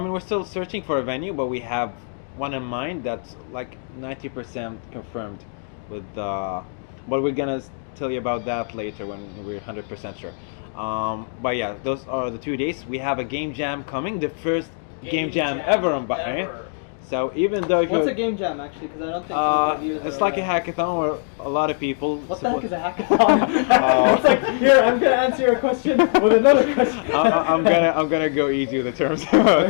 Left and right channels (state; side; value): silent; right; 64 dB below the other